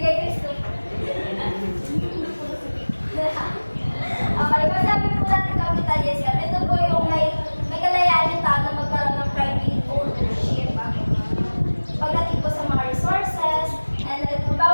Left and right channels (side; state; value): both; inverted; correlation -1.00